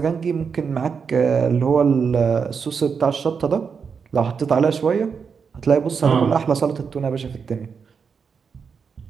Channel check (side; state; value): left; quieter; 6.0 dB